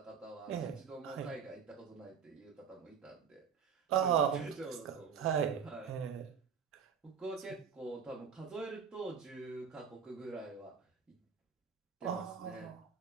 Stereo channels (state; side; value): quieter; left; 7.0 dB